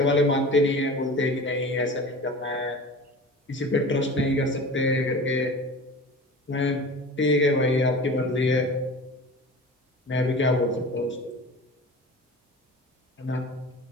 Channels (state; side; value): normal; both; correlation 0.36